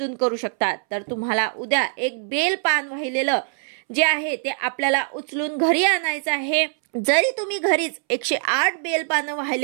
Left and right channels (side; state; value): left; silent; 64 dB below the other